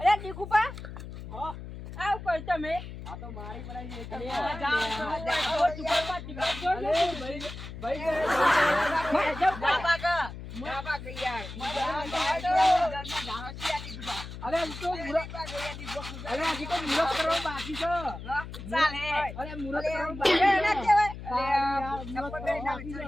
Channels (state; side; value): noise; left; hum, 11 dB below the sound